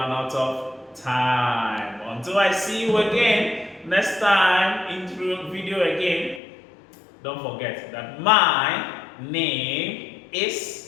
out of time. Until I see you again next time in video again, don't forget that my name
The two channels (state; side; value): drops out; right; at 6.4 s